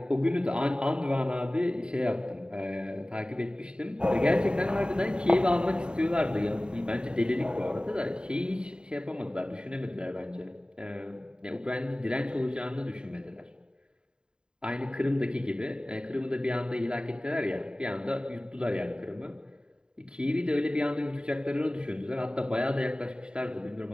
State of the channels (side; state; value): left; late; 0.049 ms